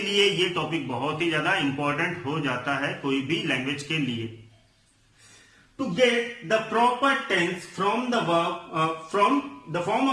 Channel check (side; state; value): both; identical; correlation 1.00